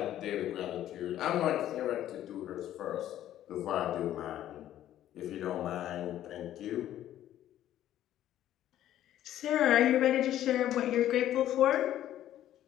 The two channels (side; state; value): right; quieter; 12.3 dB